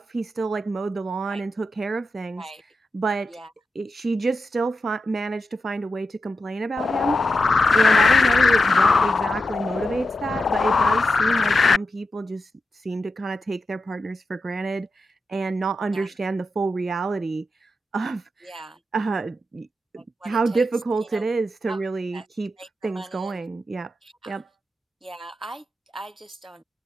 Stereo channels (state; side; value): normal; both; correlation 0.88